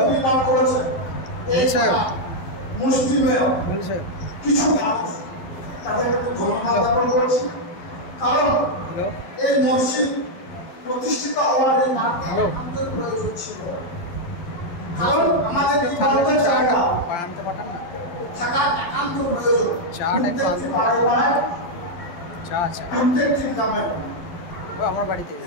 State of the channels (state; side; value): late; right; 12 ms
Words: নির্মাণ করেছেন। এই মুসলিমের কিছু মানুষ তাদেরকে আমি ধন্যবাদ জ্ঞাপন করছি, কারণ এই মসজিদ প্রতিষ্ঠিত হওয়ার এই মাঠে আমাদের প্রয়োজন ছিল। কারণ আমাদের থাকা একান্ত প্রয়োজন। প্রত্যেকটি গ্রামে আমার বাড়িতে